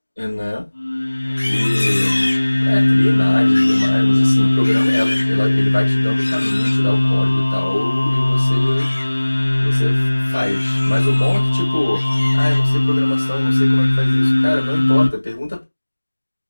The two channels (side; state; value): both; inverted; correlation -1.00